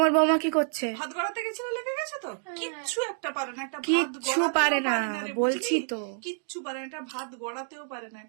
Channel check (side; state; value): left; silent; digital silence